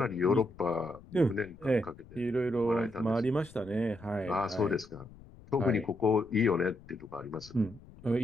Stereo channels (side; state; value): left; noise; rumble, 21 dB below the sound